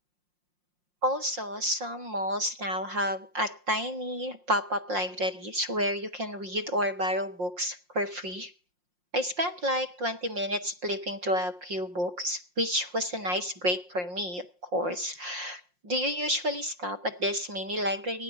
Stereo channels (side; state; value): left; late; 5.6 ms